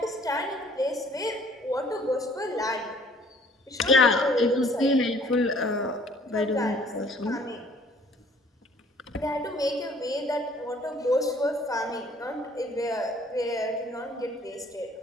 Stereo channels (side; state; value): both; normal; correlation 0.57